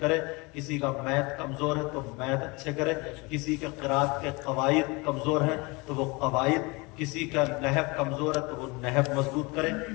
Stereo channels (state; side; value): quieter; right; 26.4 dB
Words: किसी का मैथ कमजोर है तो मैथ अच्छे करे, किसी के क़िराअत के कवायद कमजोर है तो वो कवायद, किसी का नहव कमजोर है तो वो नहव मजबूत करे,